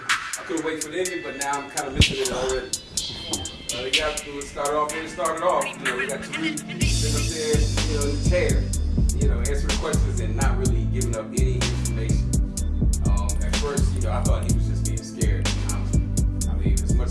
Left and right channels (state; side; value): identical; both; correlation 1.00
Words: couldn't wait for the ending, but now I'm kind of missing it already. They got to start off where it started off. You know, we got Tariq sitting up there, you know, in the chair, you know, answering questions and not really giving up any information. At first, you know, I thought he was just being scared. I mean, as much